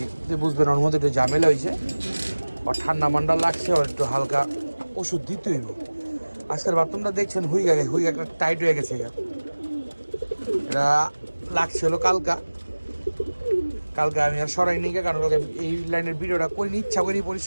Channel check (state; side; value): inverted; both; correlation -1.00